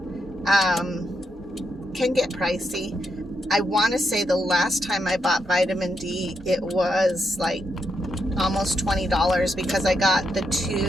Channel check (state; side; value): normal; both; correlation 0.82